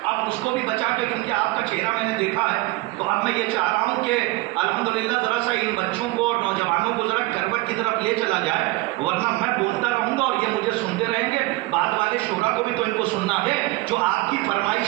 اب اس کو بھی بچا کے کیونکہ آپ کا چہرہ میں نے دیکھا ہے تو اب میں یہ چاہ رہا ہوں کہ الحمدللہ ذرا سا ان بچوں کو اور نوجوانوں کو ذرا کروٹ کی طرف لے چلا جائے ورنہ میں بولتا رہوں گا اور یہ مجھے سنتے رہیں گے بعد والے شعراء کو بھی تو ان کو سننا ہے جو آپ کی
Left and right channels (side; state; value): left; quieter; 20.8 dB